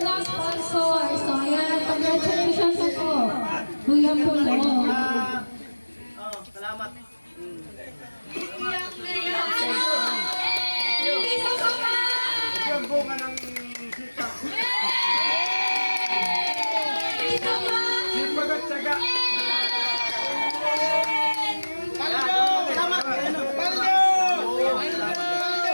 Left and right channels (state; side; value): inverted; both; correlation -1.00